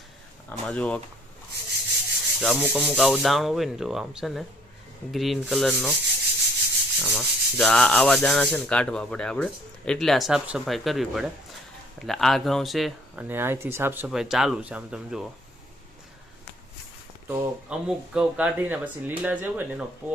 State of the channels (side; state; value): both; normal; correlation 0.59